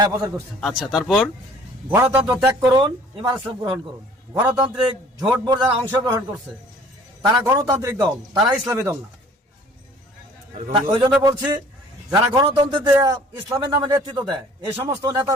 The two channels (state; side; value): normal; both; correlation 0.53